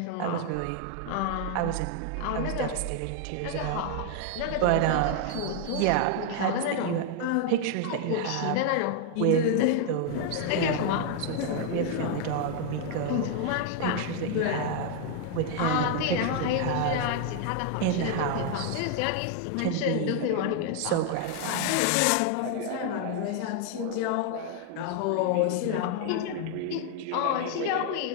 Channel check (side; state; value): both; different; correlation 0.00